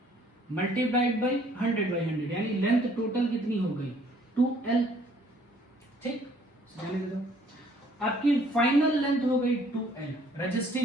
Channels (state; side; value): normal; both; correlation 0.60